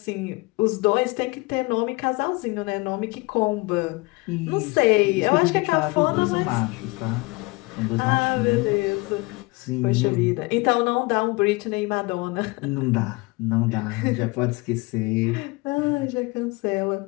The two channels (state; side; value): quieter; right; 25.1 dB